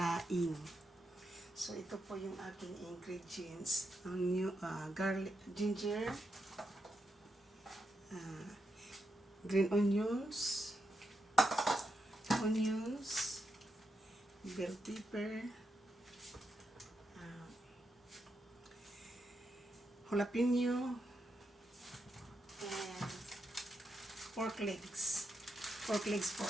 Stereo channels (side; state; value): both; normal; correlation 0.84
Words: So ito po yung aking ingredients. Ang garlic, ginger, green onions, bell pepper, jalapeno, and pork legs. Pork legs po